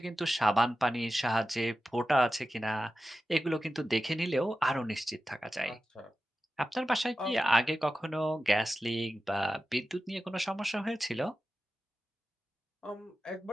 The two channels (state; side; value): normal; both; correlation 0.93